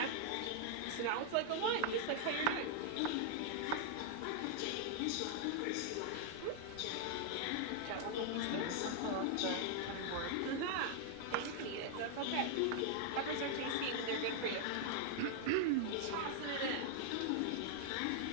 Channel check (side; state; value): both; different; correlation 0.00